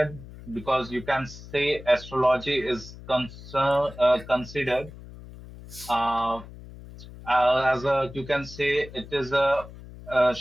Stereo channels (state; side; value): noise; left; hum, 16 dB below the sound